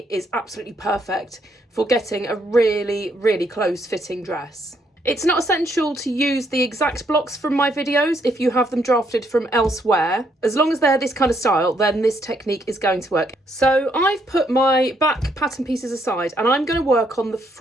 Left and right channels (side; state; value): both; normal; correlation 0.73